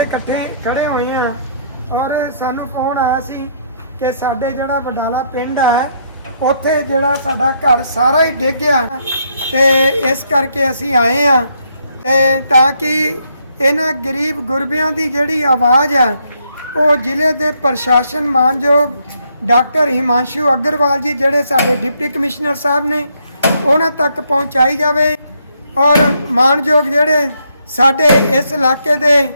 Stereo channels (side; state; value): both; inverted; correlation -0.73